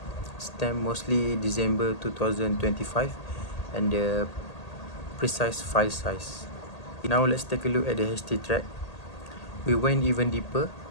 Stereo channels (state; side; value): late; right; 1.8 ms